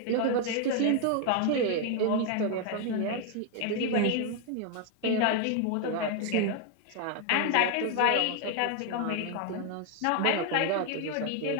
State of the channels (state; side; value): different; both; correlation 0.00